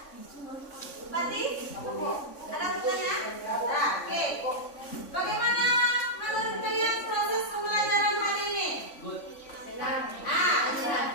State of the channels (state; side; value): late; right; 3.5 ms